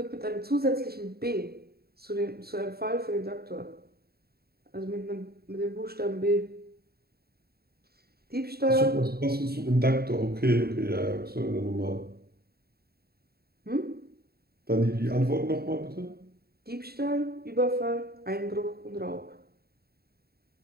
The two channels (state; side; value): late; left; 0.45 ms